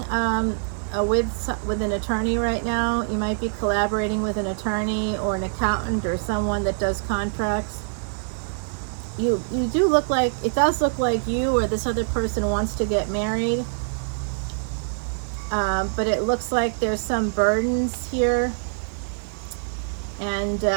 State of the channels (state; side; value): silent; left; digital silence